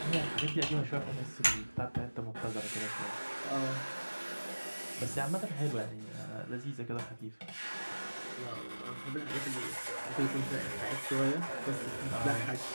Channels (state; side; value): inverted; both; correlation -1.00